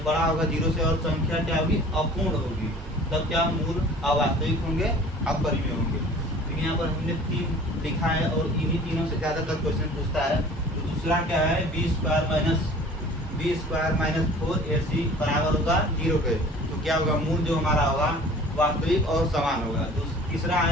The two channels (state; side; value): normal; both; correlation 0.46